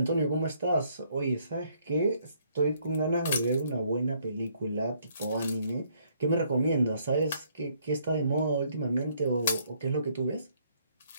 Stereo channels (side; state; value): both; inverted; correlation -0.67